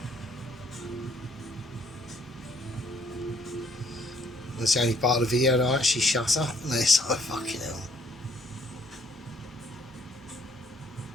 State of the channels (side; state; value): both; normal; correlation 0.65